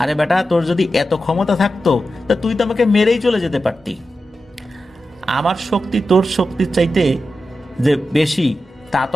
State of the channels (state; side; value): normal; both; correlation 0.91